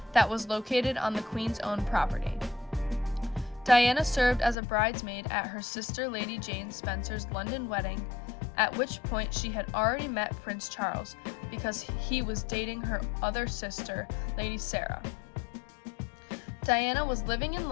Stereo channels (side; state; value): right; drops out; at 4.5 s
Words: that was located on the Queen's own property. Diana served as a bridesmaid at her sister Lady Jane Spencer's London wedding, at which point she had already met Prince Charles because he was dating her other sister, Lady Sarah. Diana was living in